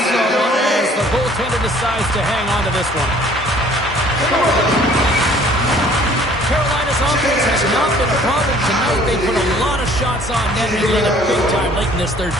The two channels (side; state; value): both; normal; correlation 0.55